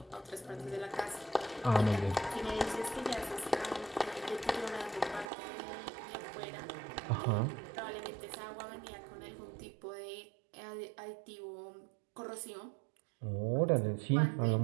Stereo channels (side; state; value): left; drops out; at 5.3 s